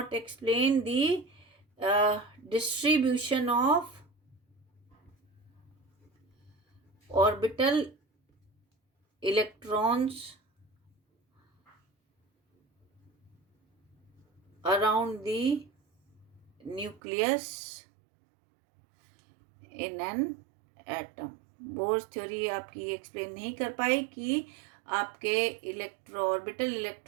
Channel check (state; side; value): drops out; left; at 17.0 s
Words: explain the distribution of orbital electrons around the nucleus in an atom. Bohr's theory आपकी explain नहीं कर पाई कि आपके orbital